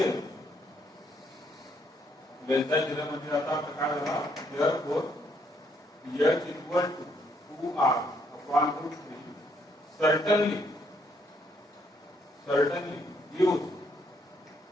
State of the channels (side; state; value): both; normal; correlation 0.71